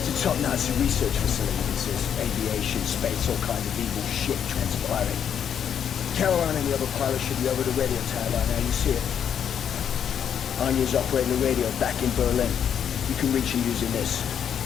a top Nazi research facility. This is aviation, space, all kinds of evil shit transpiring. Caroline and the other pilots should be over the radio tower by now. You see it. Anya's operating the radio back in Berlin. You can reach her using this.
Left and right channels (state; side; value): quieter; right; 8.5 dB